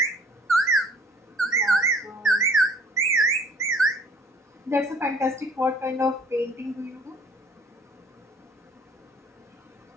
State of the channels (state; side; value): normal; both; correlation 0.55